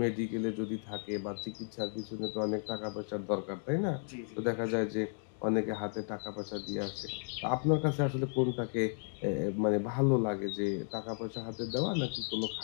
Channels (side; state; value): right; silent; 55 dB below the other